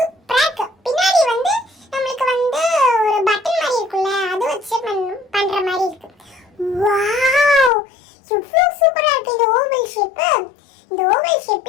இருக்கு. பின்னாடி வந்து நம்மளுக்கு வந்து ஒரு பட்டன் மாதிரி இருக்குல்ல, அது வச்சு பண்ற மாதிரி இருக்கு. வாவ், எவ்வளவு சூப்பரா இருக்கு இந்த ஓவல் ஷேப். இந்த ஓவல்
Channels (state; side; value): drops out; right; at 7.7 s